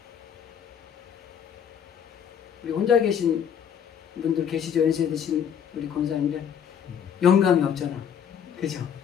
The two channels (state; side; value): quieter; right; 8.2 dB